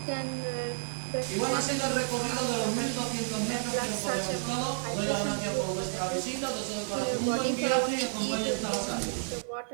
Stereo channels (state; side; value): silent; left; digital silence